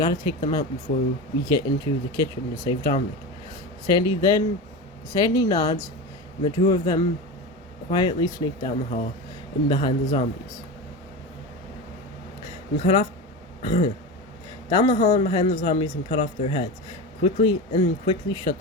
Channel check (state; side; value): normal; both; correlation 0.24